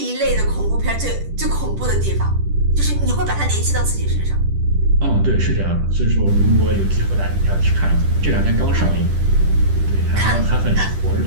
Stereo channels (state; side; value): late; left; 10 ms